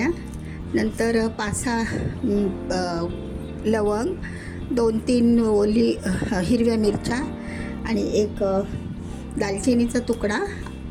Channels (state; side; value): identical; both; correlation 1.00